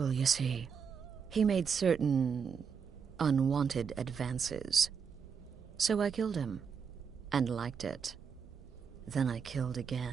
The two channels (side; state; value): left; quieter; 6.4 dB